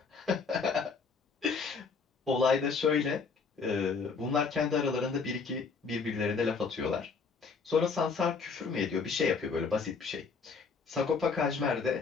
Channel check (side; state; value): right; quieter; 5.1 dB